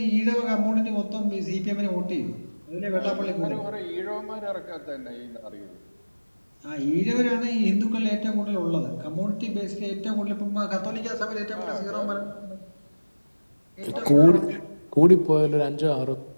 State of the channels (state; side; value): inverted; both; correlation -1.00